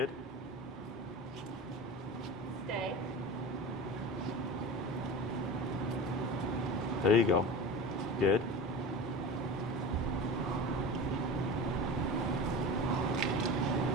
Stay. There you go. Good.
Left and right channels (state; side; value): normal; both; correlation 0.31